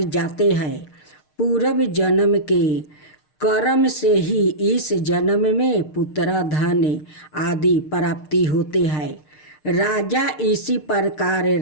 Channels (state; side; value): late; right; 6.6 ms